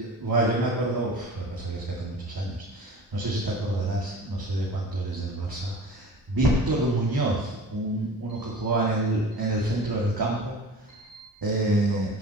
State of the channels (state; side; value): normal; both; correlation 0.39